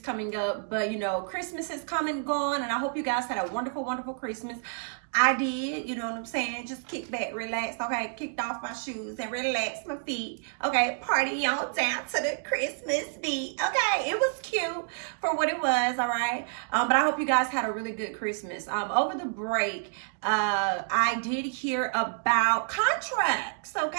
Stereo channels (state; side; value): silent; left; digital silence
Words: up, but you know, Christmas has come and gone, and I hope you guys had a wonderful, wonderful Christmas. I did, you know what I'm saying? Just kick back, relax, okay? Kicked off my shoes and relaxed my feet, okay? Party on down to the Christmas beat, okay? It was cute for what it was, all right? But I hope you guys had a really good Christmas. Over the break, I did hear about contracts,